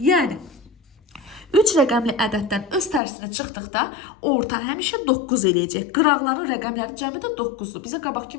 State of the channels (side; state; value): right; drops out; at 3.0 s